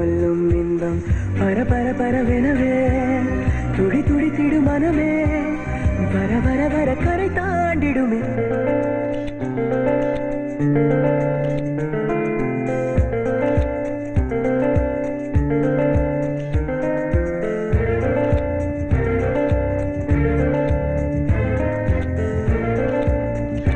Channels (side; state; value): both; identical; correlation 1.00